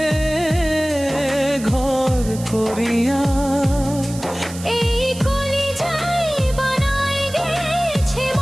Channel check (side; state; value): right; noise; hiss, 15 dB below the sound